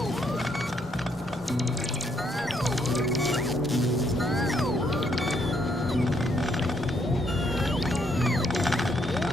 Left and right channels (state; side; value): normal; both; correlation 0.73